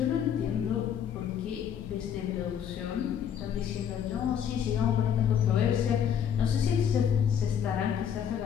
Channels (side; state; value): right; quieter; 8.6 dB